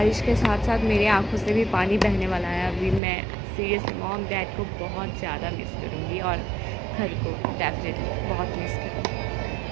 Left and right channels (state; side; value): drops out; left; at 3.0 s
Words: के साथ साथ मेरे आंखों से भी पानी बहने वाला है. अभी मैं सीरियसली मॉम डैड को बहुत ज़्यादा मिस करूँगी और घर को डेफिनेटली बहुत मिस करूँगी.